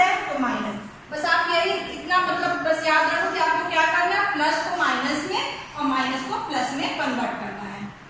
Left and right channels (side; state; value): both; identical; correlation 1.00